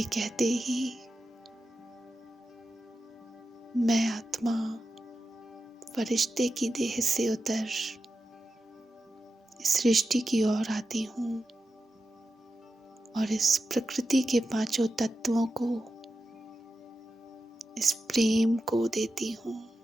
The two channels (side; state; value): both; normal; correlation 0.90